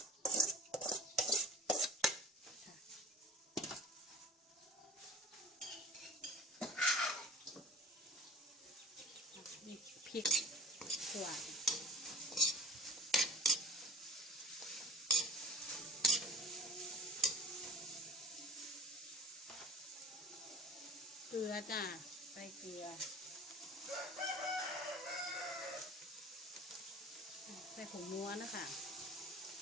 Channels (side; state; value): both; normal; correlation 0.43